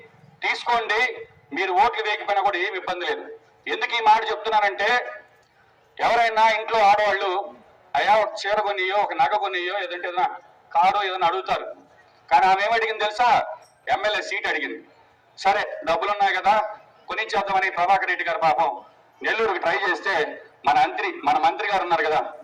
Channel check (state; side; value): identical; both; correlation 1.00